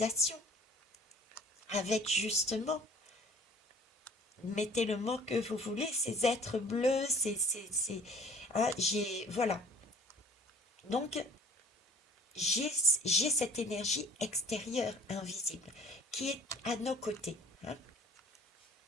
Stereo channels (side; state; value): both; normal; correlation 0.51